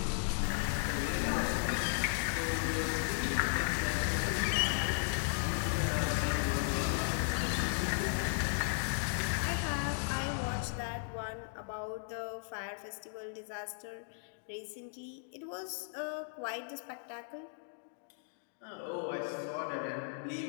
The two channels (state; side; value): silent; right; digital silence